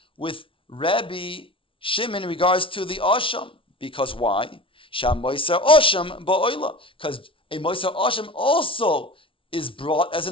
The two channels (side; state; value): right; late; 0.25 ms